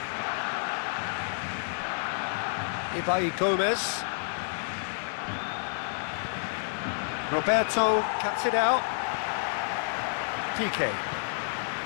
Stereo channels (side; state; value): right; silent; digital silence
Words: Ibai Gomez. Roberto cuts it out. PK.